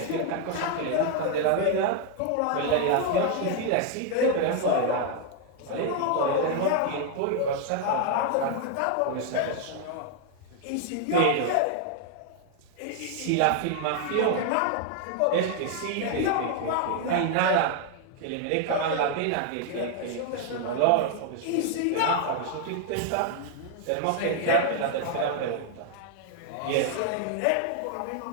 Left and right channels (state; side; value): different; both; correlation 0.00